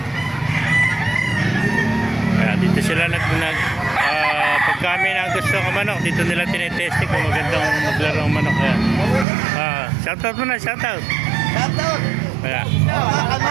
Ayan, dito sila pagka may na gusto ng manok, dito nila tinetesting kung magandang maglaro ng manok. Ayan. Shoutout mo na, shoutout. Shoutout! Ayan.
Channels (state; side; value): drops out; left; at 9.2 s